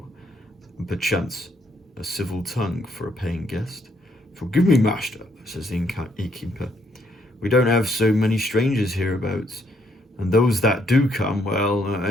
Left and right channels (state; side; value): normal; both; correlation 0.71